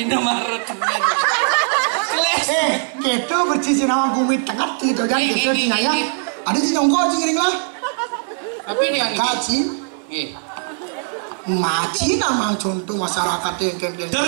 Maret. Gitu bercici nama gumit tengah gitu kan gitu ya. Ada sih nyongkol cingring lah. Tapi dia Kaci. Maci nama contoh masyarakat yang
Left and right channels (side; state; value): left; silent; 62 dB below the other